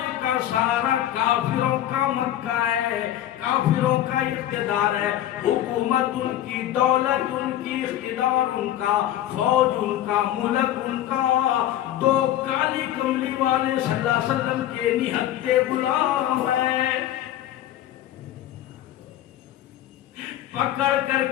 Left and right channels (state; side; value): quieter; right; 12.6 dB